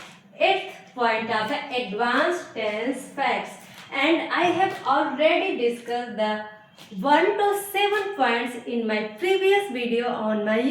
8th point of the advanced tense facts. And I have already discussed the 1 to 7 points in my previous video on my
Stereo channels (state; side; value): identical; both; correlation 1.00